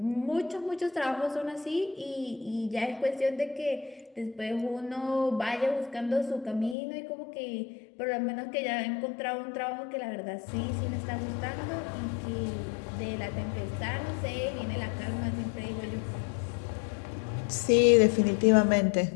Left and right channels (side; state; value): right; drops out; at 6.8 s